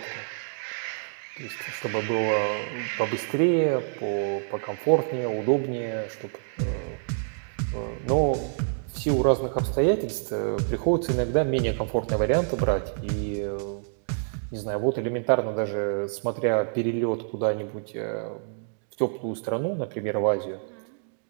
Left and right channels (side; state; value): left; silent; digital silence